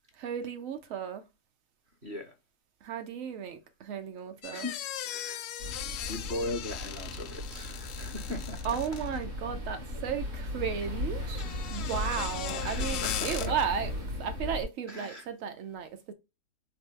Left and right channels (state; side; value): late; left; 3.1 ms